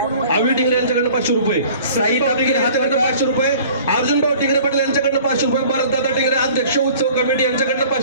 आवी टिंगरे यांच्याकडनं 500 रुपये. साई टिंगरे यांच्याकडनं 500 रुपये. अर्जुन भाऊ टिंगरे पाटील यांच्याकडनं 500 रुपये. भरतदादा टिंगरे अध्यक्ष उत्सव कमिटी यांच्याकडनं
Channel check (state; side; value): inverted; both; correlation -0.48